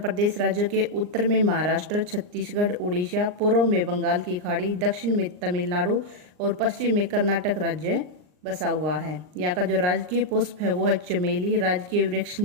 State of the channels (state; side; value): late; left; 39 ms